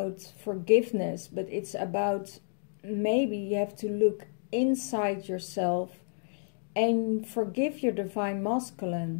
forgiveness, but it's about, maybe you have to look inside yourself and forgive your divine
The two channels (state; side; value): silent; right; digital silence